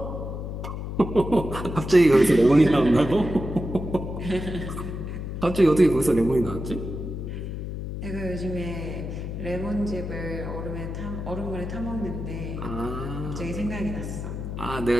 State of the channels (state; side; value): noise; left; hum, 6 dB below the sound